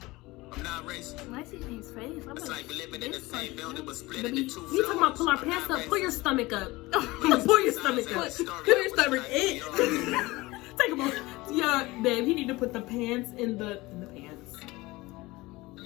I'm not racist. Why is his face? It's like we living in the same building but split into two floors. You talking about pull our pants up? Pull your stomach up. Pull your stomach up. Pull your stomach in. Take a moment. Yeah, babe, he need to put the pants in the pants.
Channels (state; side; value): quieter; right; 20.9 dB